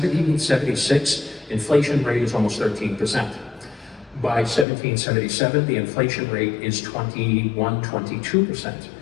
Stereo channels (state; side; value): drops out; right; at 4.7 s